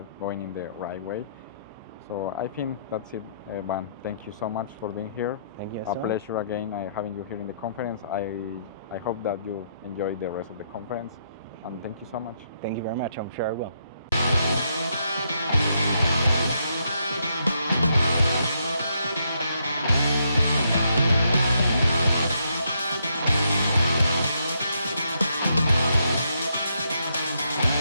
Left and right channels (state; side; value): inverted; both; correlation -0.76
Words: going in the right way. So I think that's it, Van. Thank you so much for being here. Thank you. A pleasure again having you here in the conference. I hope that you enjoy the rest of the conference, and thank you so much. Thank you very much. I'm sure I will.